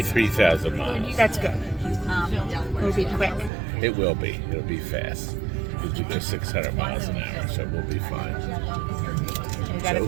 3,000 miles. That's good. It'll be quick. It will be. It'll be fast. Because we go 600 miles an hour, so we'll be fine. We got a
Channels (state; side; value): drops out; left; at 3.5 s